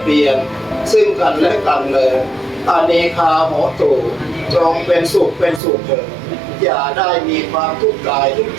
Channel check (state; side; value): drops out; left; at 5.6 s